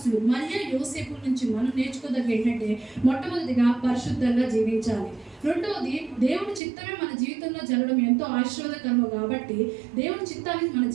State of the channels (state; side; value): drops out; left; at 6.6 s